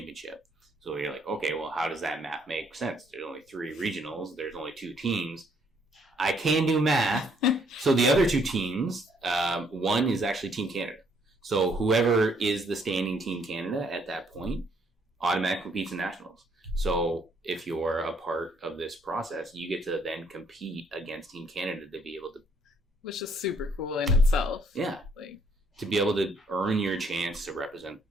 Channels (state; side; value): normal; both; correlation 0.67